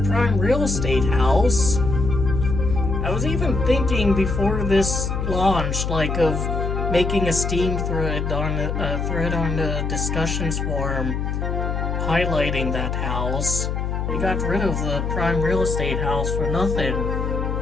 real estate house. I was even thinking before this launched, like, of making a Steam thread on the discussions forum highlighting that house. They got rid of the prime real estate house for nothing.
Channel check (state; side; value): noise; left; hum, 1 dB below the sound